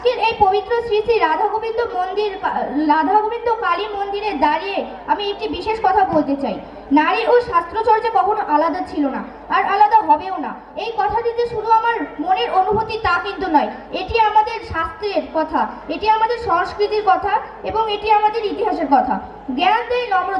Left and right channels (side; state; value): both; identical; correlation 1.00